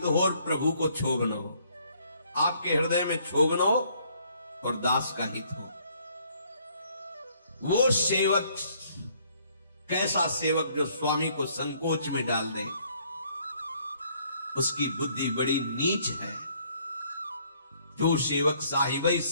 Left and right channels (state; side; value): inverted; both; correlation -0.64